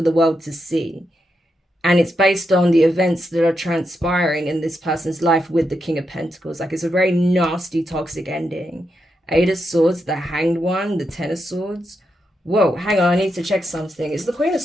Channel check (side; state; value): both; normal; correlation 0.84